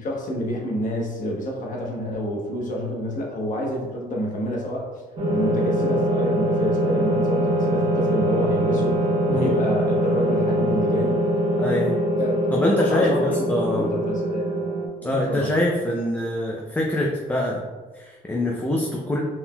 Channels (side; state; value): both; normal; correlation 0.58